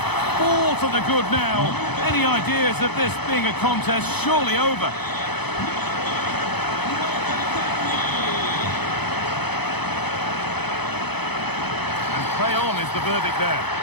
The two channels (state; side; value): late; right; 0.98 ms